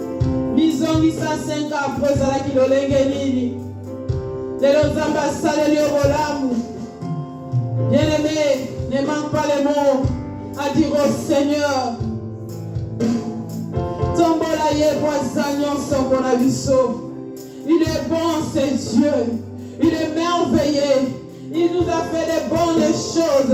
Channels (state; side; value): identical; both; correlation 1.00